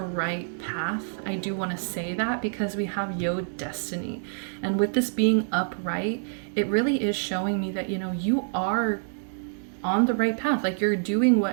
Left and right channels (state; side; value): silent; left; digital silence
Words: path. I do want to say that because we have Yod, Destiny, and with this being upright, it really is showing me that, you know, you are on the right path. Like, you're doing